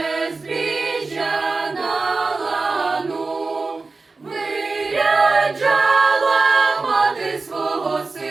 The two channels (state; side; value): quieter; left; 3.9 dB